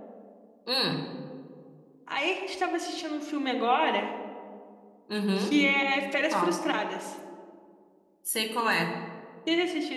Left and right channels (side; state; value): both; identical; correlation 1.00